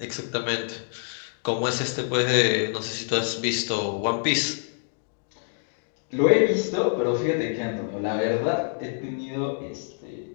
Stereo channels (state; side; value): silent; right; digital silence